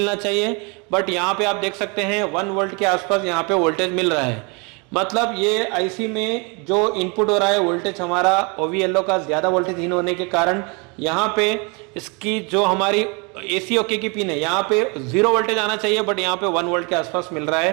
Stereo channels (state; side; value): quieter; left; 31.4 dB